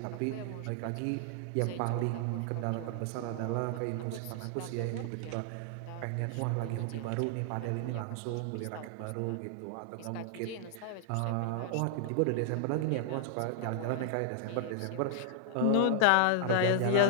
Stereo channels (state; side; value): different; both; correlation 0.00